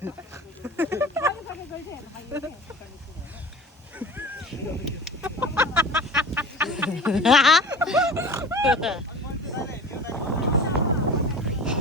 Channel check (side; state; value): both; normal; correlation 0.38